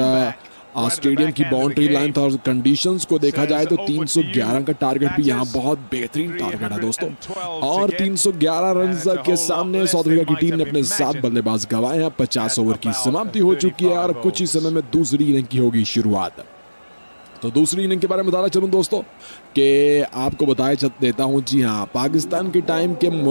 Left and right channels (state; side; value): inverted; both; correlation -1.00